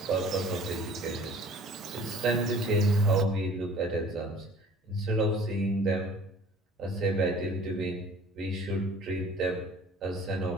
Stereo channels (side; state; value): both; normal; correlation 0.49